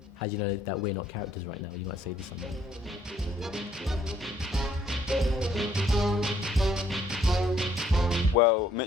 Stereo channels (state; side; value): normal; both; correlation 0.65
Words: How do you know that we're not characters right now? You might say this something. Well,